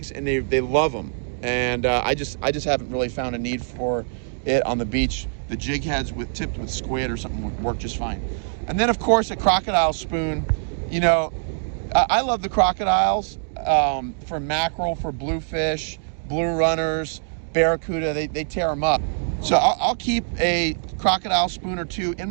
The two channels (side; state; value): left; silent; digital silence